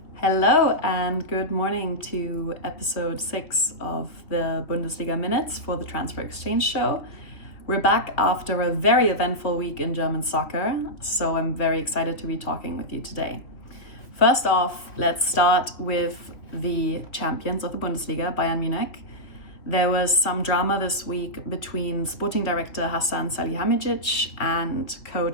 Hello and good morning to episode 6 of the Bundesliga Minutes for the Transfer Exchange Show. We're back after a very eventful week in German soccer, so I'm very excited to be talking with you today. First off, let's start with the champions of the Bundesliga, Bayern Munich. There was some drama this week between sporting director Hasan Salihamidzic and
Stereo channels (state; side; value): late; right; 2.9 ms